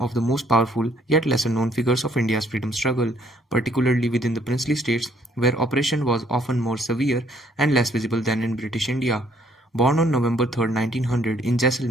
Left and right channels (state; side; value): normal; both; correlation 0.65